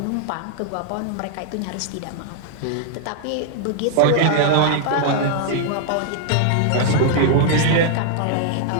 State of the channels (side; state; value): both; different; correlation -0.01